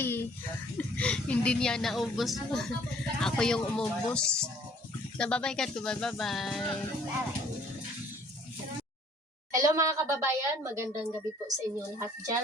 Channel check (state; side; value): normal; both; correlation 0.58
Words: Hindi niya naubos. Ako yung umubos. Nababay ka, Kubay. Bye-bye. Hello mga kababayan. Magandang gabi po sa inyo lahat